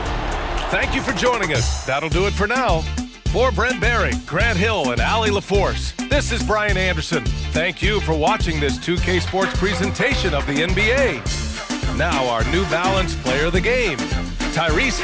Thank you for joining us. That'll do it for now. For Brent Barry, Grant Hill, and Allie LaForce, this is Brian Anderson. Thank you for watching this 2K Sports presentation of the NBA. Now our New Balance player of the game, Tyrese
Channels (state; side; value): identical; both; correlation 1.00